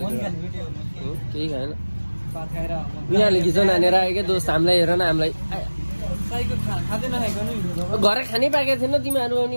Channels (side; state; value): both; inverted; correlation -1.00